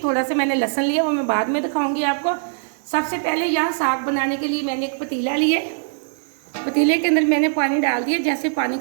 सा मैंने लहसुन लिया, वो मैं बाद में दिखाऊंगी आपको। सबसे पहले यहाँ साग बनाने के लिए मैंने एक पतीला लिया, पतीले के अंदर मैंने पानी डाल दिया। जैसे पानी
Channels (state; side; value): silent; left; digital silence